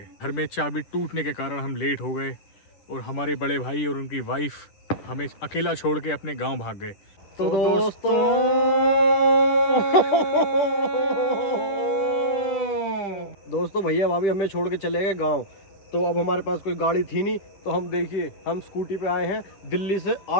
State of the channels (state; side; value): late; right; 10 ms